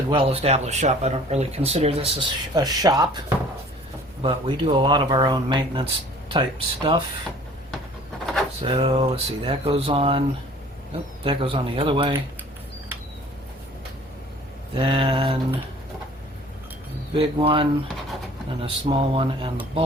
well-established shop, I don't really consider this a shop, but we do a lot of our own maintenance type stuff. So let's see, that goes on. Oh, that goes on the other way. Then a big one, and a small one, and the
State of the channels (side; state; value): both; normal; correlation 0.50